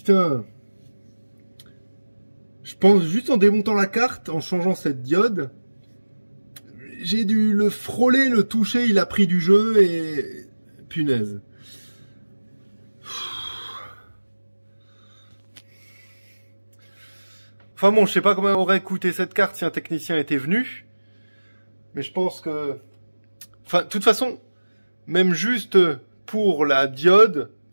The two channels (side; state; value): both; inverted; correlation -1.00